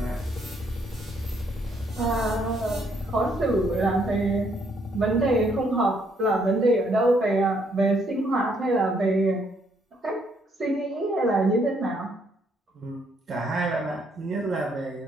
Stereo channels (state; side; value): normal; both; correlation 0.70